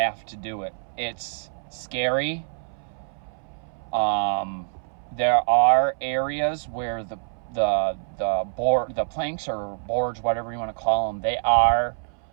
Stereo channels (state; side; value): silent; left; 61 dB below the other